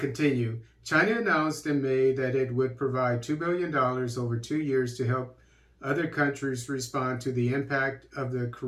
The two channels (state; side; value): identical; both; correlation 1.00